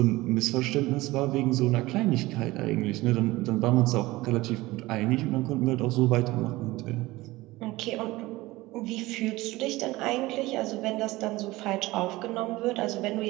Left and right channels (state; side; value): quieter; left; 19.5 dB